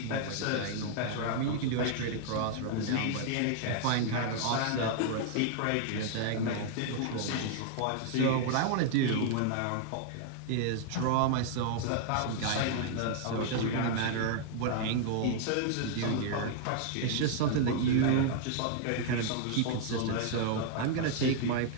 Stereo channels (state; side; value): different; both; correlation -0.01